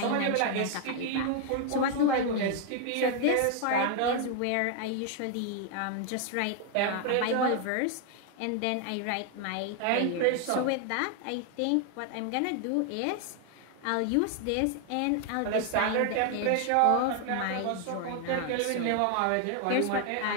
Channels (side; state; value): both; different; correlation 0.00